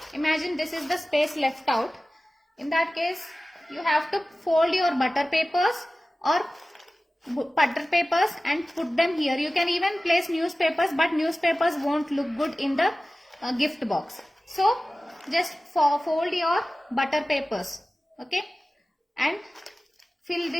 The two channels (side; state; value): both; normal; correlation 0.96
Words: imagine this is the space left out. In that case, you have to fold your butter papers and put them here. You can even place newspapers, but newspapers won't look good in the gift box. So just fold your butter papers, okay, and fill